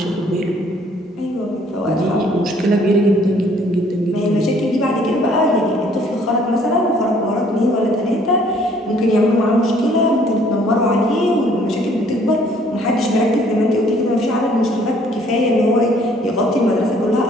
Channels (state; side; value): normal; both; correlation 0.61